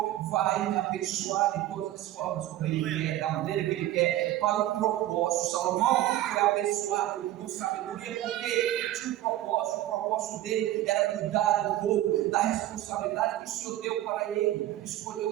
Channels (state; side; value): quieter; left; 14.2 dB